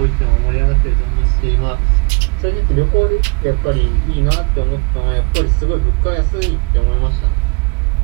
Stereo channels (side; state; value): left; quieter; 30.5 dB